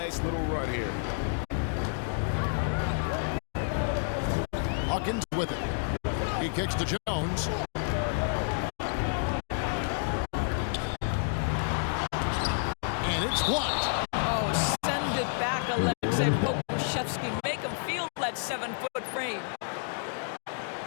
little run here. Hawkins with it. He kicks to Jones. And it's blocked. Oh, send it back, Alexei Pokushevsky. Make him feel that 7-foot frame.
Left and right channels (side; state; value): right; silent; digital silence